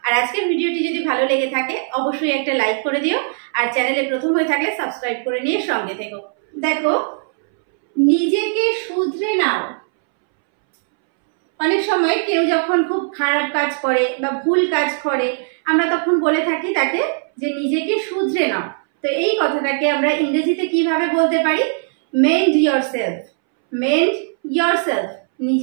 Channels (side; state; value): left; silent; 65 dB below the other